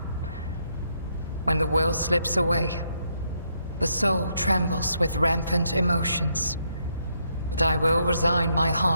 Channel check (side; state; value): both; inverted; correlation -0.76